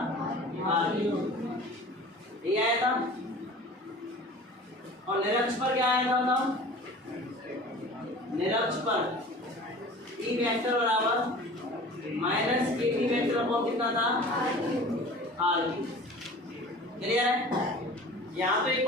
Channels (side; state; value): both; normal; correlation 0.41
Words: r ये आया था। और निरक्ष पर क्या आया था बताओ? निरक्ष पर ई वेक्टर बराबर -kb वेक्टर अपॉन कितना था? r क्लियर है? यहाँ तो एक